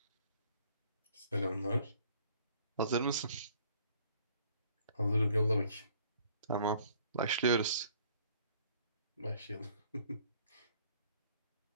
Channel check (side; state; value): both; inverted; correlation -0.60